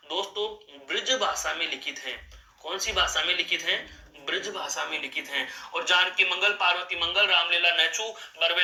दोस्तों ब्रज भाषा में लिखित हैं। कौन सी भाषा में लिखित हैं? ब्रज भाषा में लिखित हैं। और जानकी मंगल, पार्वती मंगल, रामलीला नहछू, बरवे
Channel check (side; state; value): both; identical; correlation 1.00